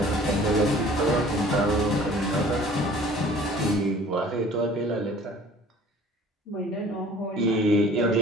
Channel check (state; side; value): normal; both; correlation 0.50